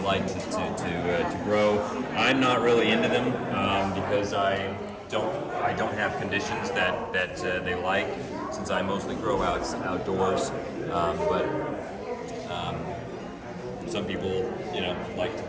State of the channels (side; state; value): both; identical; correlation 1.00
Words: to grow. I'm not really into them because I don't have conditions that they like, since I mostly grow outdoors. But some people, like to